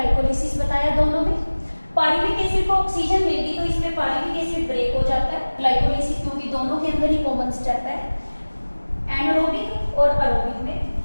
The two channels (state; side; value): inverted; both; correlation -1.00